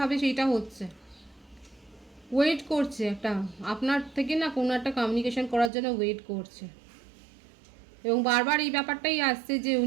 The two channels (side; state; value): left; drops out; at 5.7 s